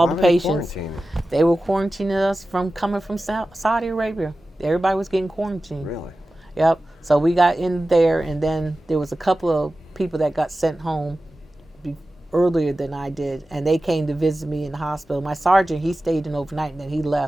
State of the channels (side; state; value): both; normal; correlation 0.94